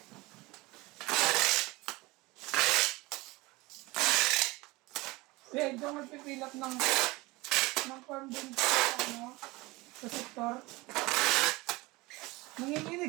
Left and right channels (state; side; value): quieter; left; 22.3 dB